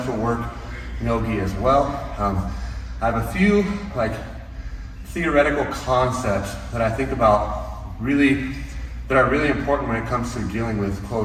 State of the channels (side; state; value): both; identical; correlation 1.00